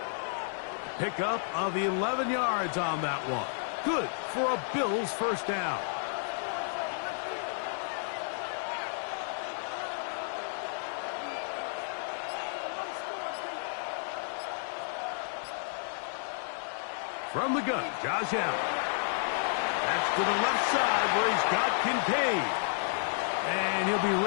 Pickup of 11 yards on that one. Good for a Bills first down. From the gun, Josh Allen. That's to the left side where he's got Kincaid. And he'll be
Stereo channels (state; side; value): silent; right; digital silence